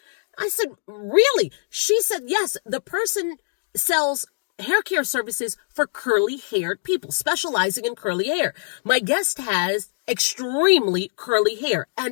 I said, really? She said, yes, the person sells hair care services for curly-haired people, specializing in curly hair. My guest has extremely curly hair,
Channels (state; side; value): silent; right; digital silence